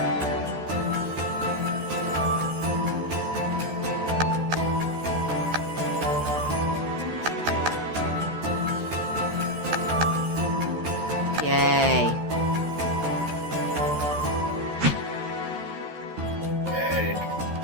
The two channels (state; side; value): late; left; 13 ms